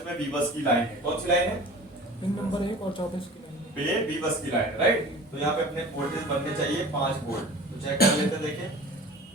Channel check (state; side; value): normal; both; correlation 0.40